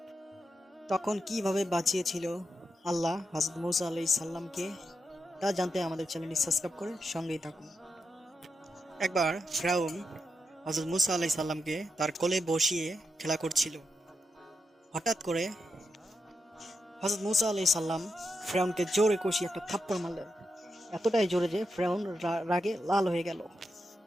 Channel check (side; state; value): both; normal; correlation 0.86